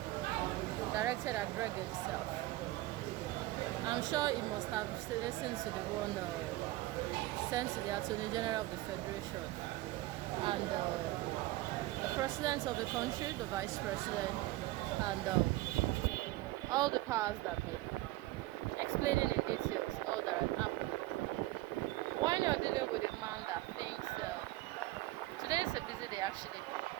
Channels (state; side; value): quieter; left; 18.3 dB